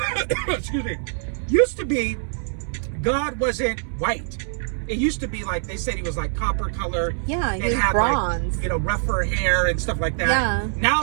Excuse me. Used to be God wasn't white. It used to be like, they said he was like copper color. Yeah, he was had bronze. Like, rougher hair and stuff like that. Yeah. Now all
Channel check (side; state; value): left; silent; 61 dB below the other